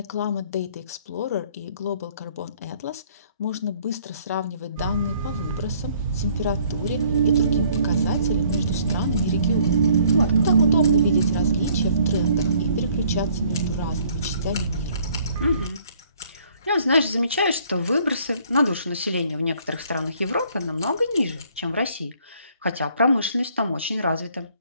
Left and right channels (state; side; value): inverted; both; correlation -0.61